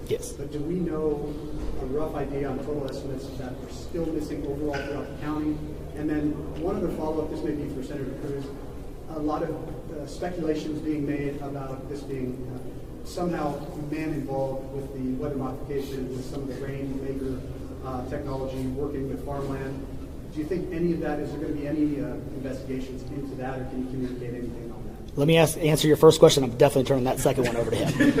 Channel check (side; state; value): both; identical; correlation 1.00